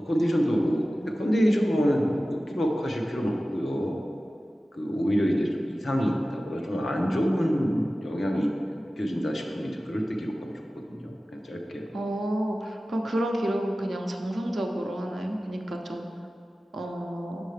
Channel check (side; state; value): both; normal; correlation 0.96